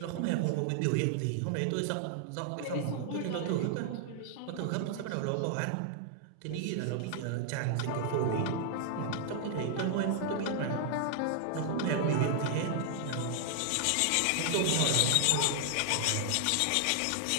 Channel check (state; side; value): different; both; correlation 0.00